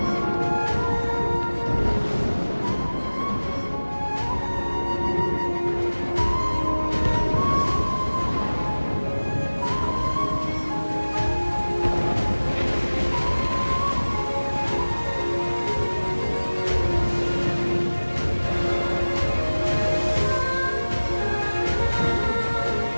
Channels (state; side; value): inverted; both; correlation -1.00